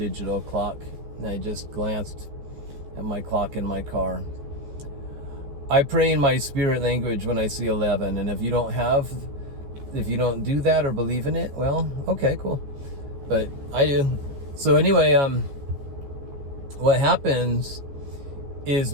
clock, and I just glanced at my clock in my car. I pray in my spirit language when I see 11, and if you don't do that or believe in it, well, okay, cool. But I do. So anyway, what happens is,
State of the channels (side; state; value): left; late; 14 ms